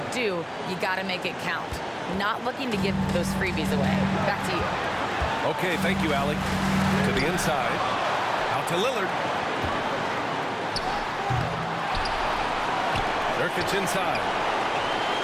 do, you got to make it count. Not looking to give those freebies away. Back to you. Okay, thank you, Allie. To the inside. Out to Lillard. Nurkic inside.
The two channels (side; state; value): both; identical; correlation 1.00